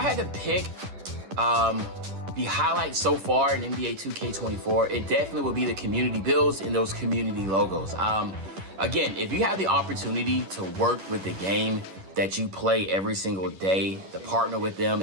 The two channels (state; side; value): late; left; 10 ms